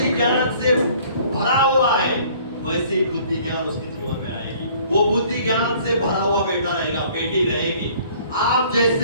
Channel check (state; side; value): inverted; both; correlation -0.55